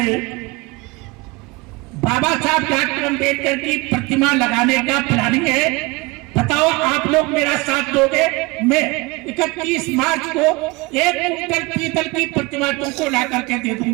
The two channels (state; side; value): quieter; left; 24.5 dB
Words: बाबा साहब डॉक्टर अम्बेडकर की प्रतिमा लगाने का प्लानिंग है। बताओ, आप लोग मेरा साथ दोगे? मैं 31 मार्च को 1 कुंटल पीतल की प्रतिमा तुमको ला करके दे